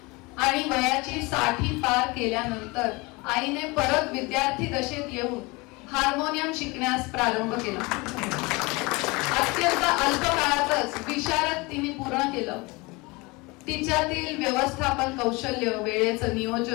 आणि वयाची 60 पार केल्यानंतर आईने परत विद्यार्थी दशेत येऊन हार्मोनियम शिकण्यास प्रारंभ केला. अत्यंत अल्प काळातच विशारद तिने पूर्ण केलं. तिच्यातील व्यवस्थापन कौशल्य, वेळेचं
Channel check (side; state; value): right; quieter; 25.2 dB